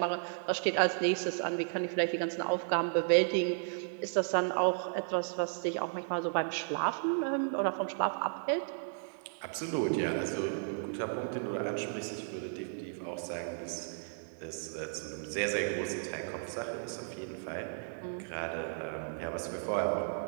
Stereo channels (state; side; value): silent; left; digital silence